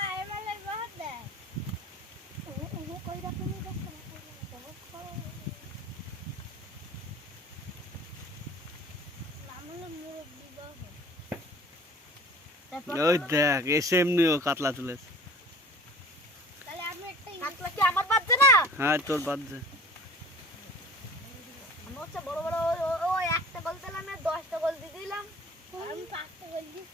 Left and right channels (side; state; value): both; normal; correlation 0.45